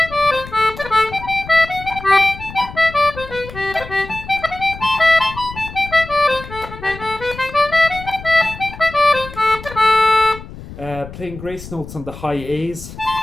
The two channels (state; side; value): noise; left; rumble, 14 dB below the sound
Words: Playing grace notes on the high A's.